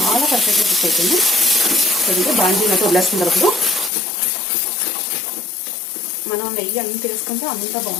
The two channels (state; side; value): drops out; right; at 3.9 s